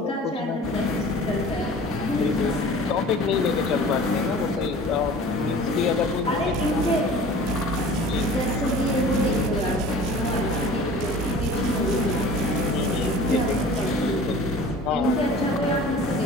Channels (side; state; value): both; normal; correlation 0.43